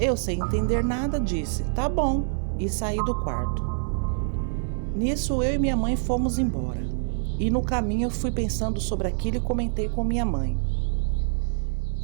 sem entender nada, disse: "Tá bom", e saí do quarto. Nisso, eu e minha mãe fomos embora. E no caminho eu fui pensando sobre aquilo e comentei com minha mãe.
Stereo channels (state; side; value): silent; left; digital silence